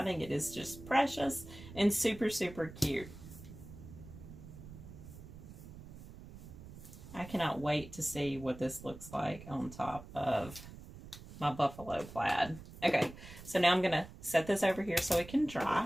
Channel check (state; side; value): noise; right; rumble, 15 dB below the sound